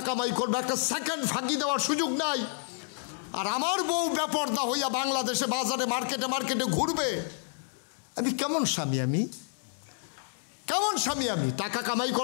কামাই করবো, একটা সেকেন্ড ফাঁকি দেওয়ার সুযোগ নাই। আর আমার বউ বেপর্দা হইয়া বাংলাদেশে বাজারে মার্কেটে মার্কেটে ঘুরবে। আমি কেমন স্বামী? আমি কেমন স্বামী? আমি টাকা কামাই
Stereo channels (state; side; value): silent; right; 58 dB below the other